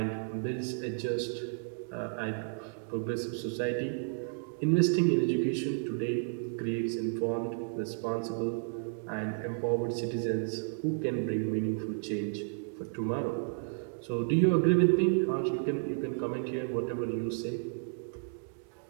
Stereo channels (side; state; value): left; silent; digital silence